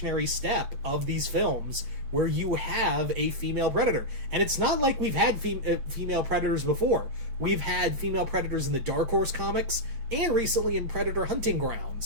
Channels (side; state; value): left; late; 8.6 ms